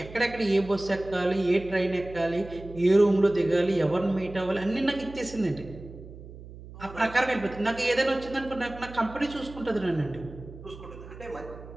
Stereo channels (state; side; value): noise; right; hum, 16 dB below the sound